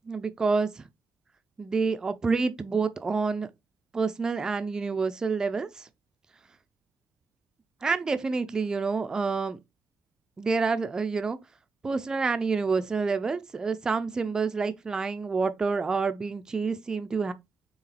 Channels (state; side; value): quieter; left; 4.2 dB